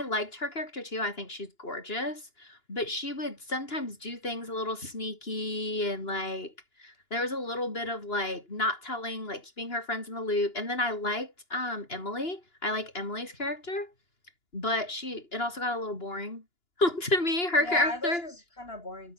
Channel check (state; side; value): late; right; 2.9 ms